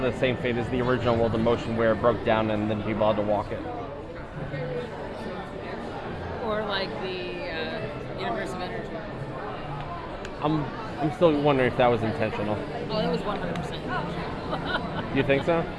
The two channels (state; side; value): identical; both; correlation 1.00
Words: same fate as the original World of Motion, where it broke down and then people had to walk it. Or like the Universe of Energy. I'm still wondering if that was intentional. Oh, that was 100%. You think so?